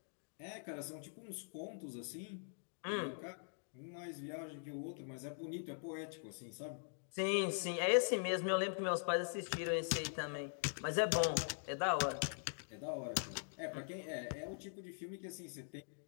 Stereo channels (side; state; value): right; silent; digital silence